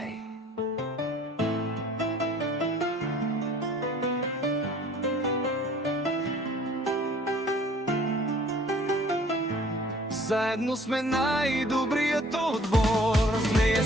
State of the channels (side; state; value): both; normal; correlation 0.53